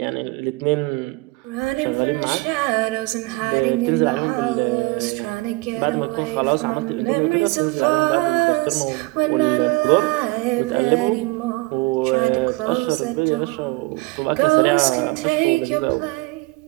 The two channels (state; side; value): quieter; left; 24.0 dB